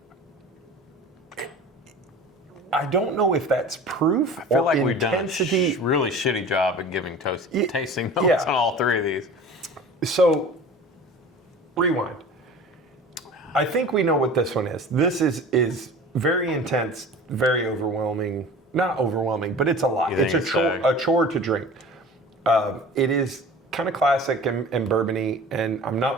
I don't know if that's proof I feel or like we've done a intensity. really shitty job at giving tasting notes yeah. on all 3 of these. So, rewind. I think we know what this one is. This is very intense, very overwhelming. Not overwhelming, but it's a lot. You It's think a it's chore, Stagg? a chore to drink. It is kind of classic and bourbony, and I'm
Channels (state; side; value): normal; both; correlation 0.40